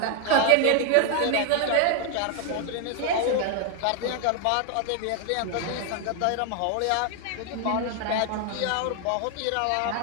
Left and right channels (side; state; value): both; different; correlation 0.00